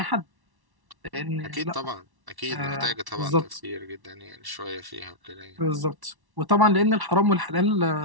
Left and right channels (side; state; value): left; late; 1.1 ms